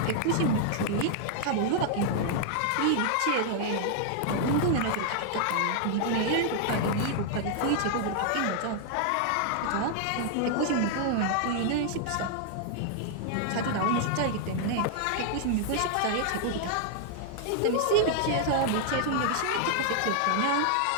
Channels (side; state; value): both; different; correlation -0.01